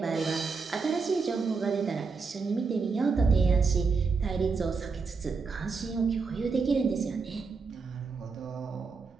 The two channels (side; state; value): left; quieter; 4.8 dB